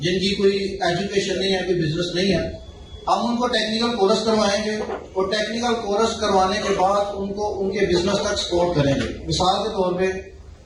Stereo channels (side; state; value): both; identical; correlation 1.00